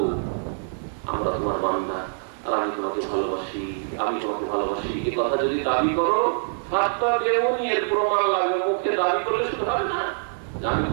আমরা তোমার বান্দা আর আমি তোমাকে ভালোবাসি, আমি তোমাকে ভালোবাসি, এই কথা যদি দাবি করো, ফাত্তাবিউনি এর প্রমাণ লাগবে। মুখে দাবি করলে শুধু হবে না, আমি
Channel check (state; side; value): silent; left; 60 dB below the other